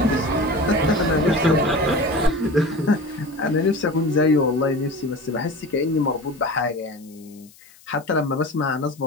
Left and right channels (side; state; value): left; noise; hiss, 26 dB below the sound